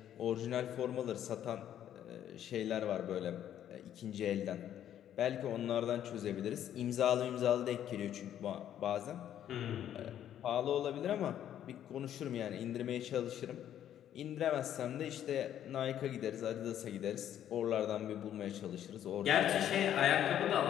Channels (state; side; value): quieter; right; 10.7 dB